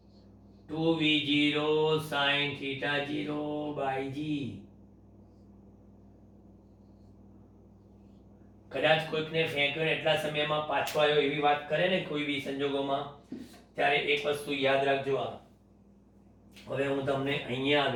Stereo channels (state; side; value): identical; both; correlation 1.00